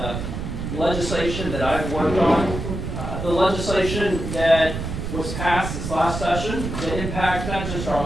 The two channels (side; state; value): right; noise; rumble, 5 dB below the sound